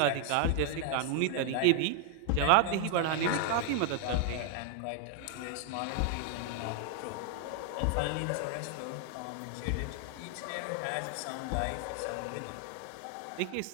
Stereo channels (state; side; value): different; both; correlation 0.00